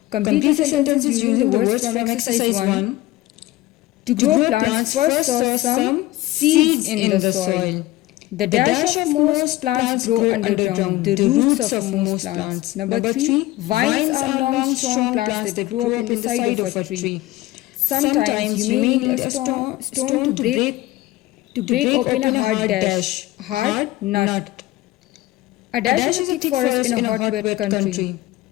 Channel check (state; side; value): quieter; right; 17.3 dB